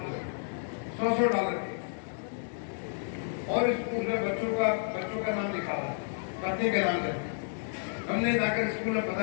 हुए, $100 के, और स्कूल में बच्चों का नाम लिखा था, पत्नी के नाम से। हमने जाकर स्कूल में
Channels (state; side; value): silent; right; digital silence